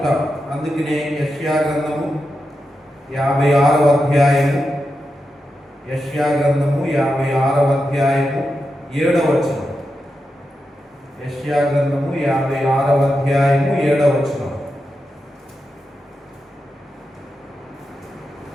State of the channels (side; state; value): both; normal; correlation 0.88